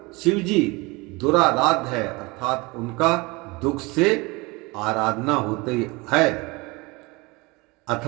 शिव जी दुराराध्य है, अर्थात उनका दुख से आराधना होती है,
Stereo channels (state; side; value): quieter; left; 24.7 dB